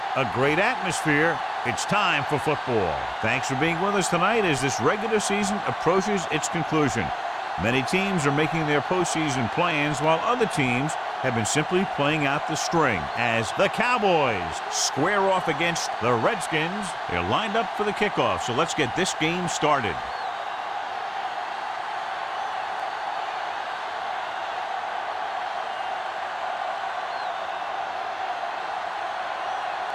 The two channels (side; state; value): both; identical; correlation 1.00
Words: a great atmosphere. It's time for football. Thanks for being with us tonight as this regular season approaches its conclusion. Many teams are making their postseason plans while other teams have been simply playing out the string as the Cowboys square off against the Redskins. They're lined up for the kickoff, so let's get this game started.